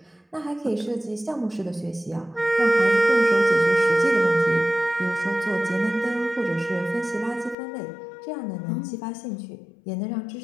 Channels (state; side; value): drops out; right; at 7.6 s